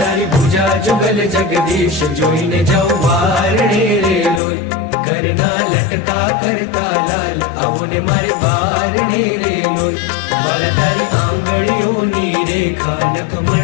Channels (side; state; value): right; drops out; at 4.4 s